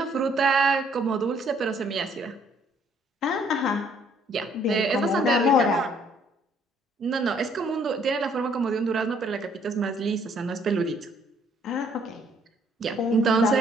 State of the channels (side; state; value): both; normal; correlation 0.64